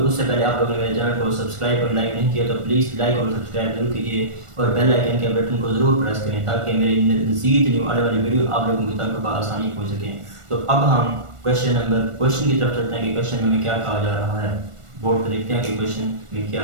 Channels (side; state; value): left; late; 1.4 ms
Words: उससे पहले आप लोगों ने मेरे चैनल को सब्सक्राइब और लाइक नहीं किया तो प्लीज़ लाइक और सब्सक्राइब जरूर कीजिए और बेल आइकन के बटन को ज़रूर प्रेस करें ताकि मेरी मज़ीद न्यू आने वाली वीडियो आप लोगों तक आसानी पहुँच सकें। तो अब हम क्वेश्चन की तरफ चलते हैं कि क्वेश्चन में क्या कहा जा रहा है। बोर्ड पर देखते हैं कि क्वेश्चन में क्या